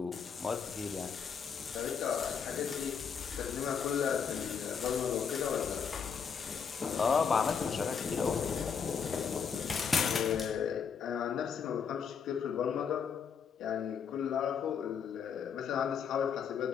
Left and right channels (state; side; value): quieter; right; 6.8 dB